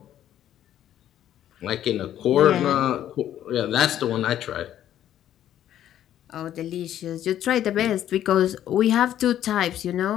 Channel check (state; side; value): quieter; right; 11.4 dB